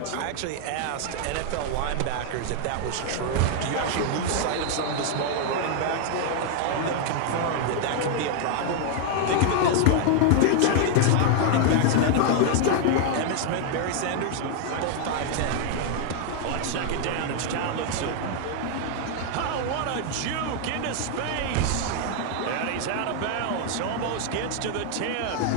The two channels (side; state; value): both; different; correlation 0.00